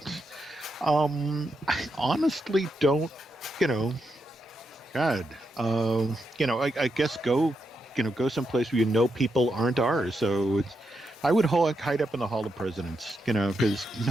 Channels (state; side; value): normal; both; correlation 0.84